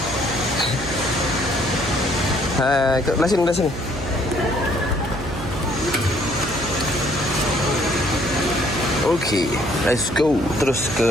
Belah sini. Okay, let's go. Terus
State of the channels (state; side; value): noise; right; hum, 8 dB below the sound